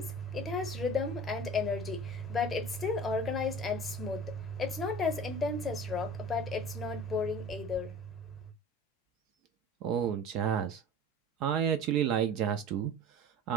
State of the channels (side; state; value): both; normal; correlation 0.40